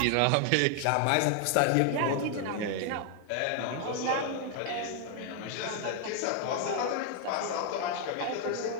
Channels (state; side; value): different; both; correlation 0.00